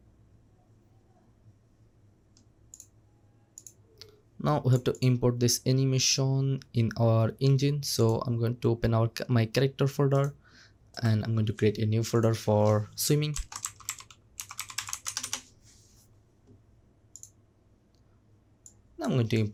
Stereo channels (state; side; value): identical; both; correlation 1.00